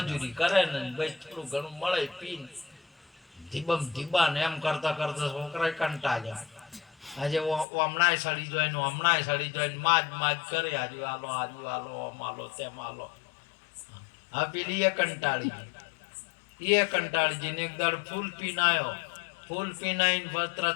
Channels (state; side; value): drops out; right; at 7.7 s